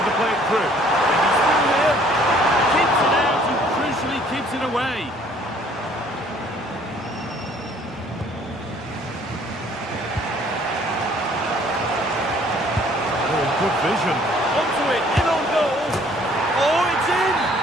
play it through. And he's through here. Keeps it out and crucially keeps it away. Oh, good vision. Onto it, in on goal. Oh, it's in!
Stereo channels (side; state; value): both; normal; correlation 0.58